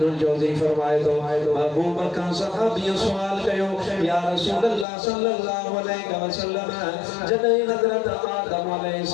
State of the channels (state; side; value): drops out; right; at 4.9 s